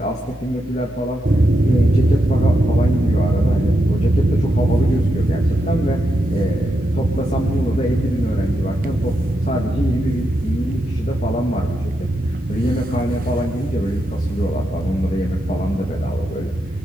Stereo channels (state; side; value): normal; both; correlation 0.84